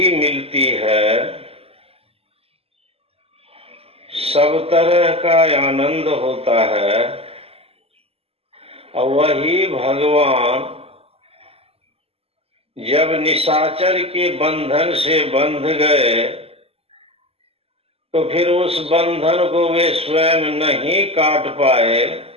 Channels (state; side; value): late; left; 0.29 ms